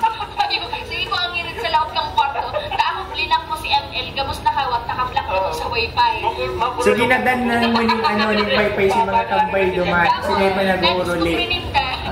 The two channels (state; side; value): identical; both; correlation 1.00